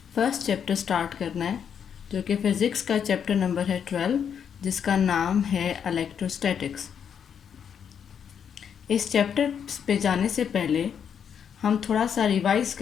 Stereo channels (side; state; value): right; quieter; 7.8 dB